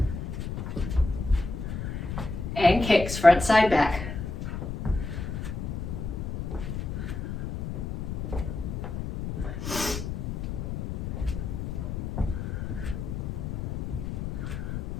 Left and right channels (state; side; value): noise; left; rumble, 4 dB below the sound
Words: And kicks, front, side, back.